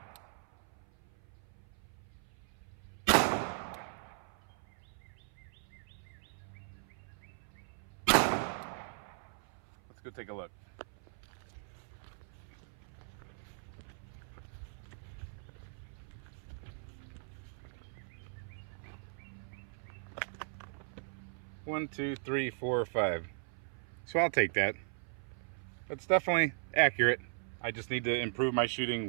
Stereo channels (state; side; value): silent; left; 52 dB below the other